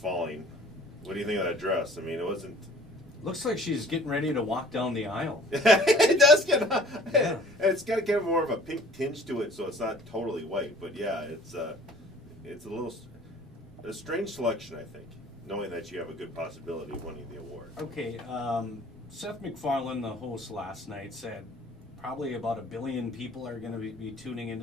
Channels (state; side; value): normal; both; correlation 0.50